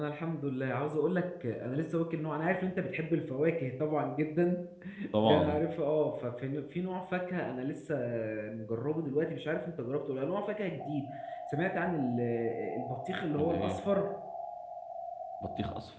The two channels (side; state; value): both; identical; correlation 1.00